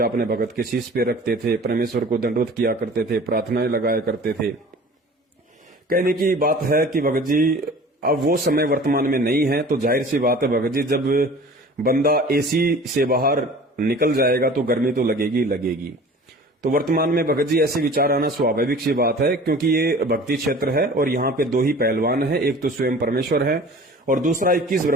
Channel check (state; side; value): normal; both; correlation 0.44